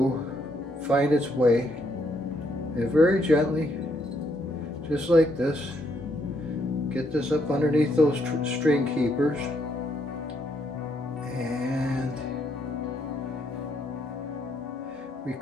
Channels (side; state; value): both; normal; correlation 0.74